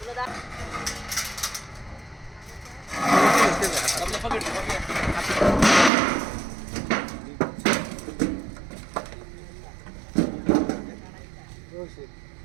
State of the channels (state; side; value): drops out; left; at 5.9 s